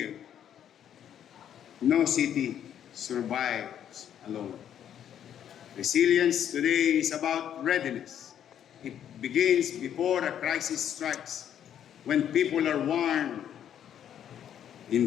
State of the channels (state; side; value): quieter; right; 9.8 dB